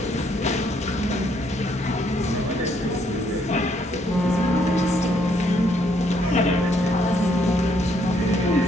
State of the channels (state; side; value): normal; both; correlation 0.70